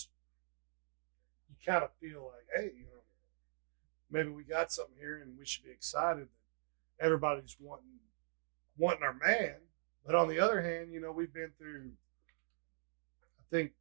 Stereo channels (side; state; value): left; silent; digital silence